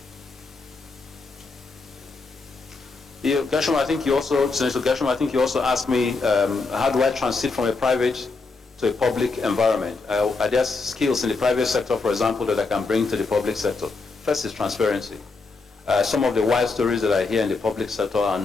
Gershom, I think you also, Senator Gershom, I think you also asked me, how do I transit from a private to a public environment? Are there skills in the private sector, for example, that I can bring to the public sector? First is transparency. Some of the wild stories that I hear in the public sector are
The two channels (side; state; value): right; quieter; 4.0 dB